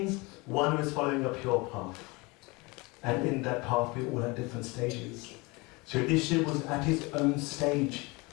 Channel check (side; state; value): right; quieter; 25.7 dB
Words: one who is following a pure path. And in that path we all at different stages. So Yudhishthira was at his own stage